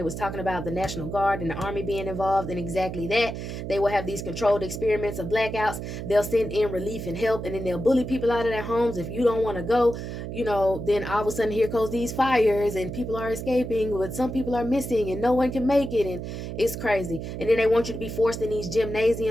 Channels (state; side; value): noise; right; hum, 7 dB below the sound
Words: was talking about the National Guard and the Army being involved in exactly that. They will have these controlled experiments of blackouts. They'll send in relief and help, and then they'll bully people out of their homes. If you don't want to go, then all of a sudden here goes these fires, and people are escaping, but some people are missing, and no one can make it, and it's crazy. And then they want you to be forced in these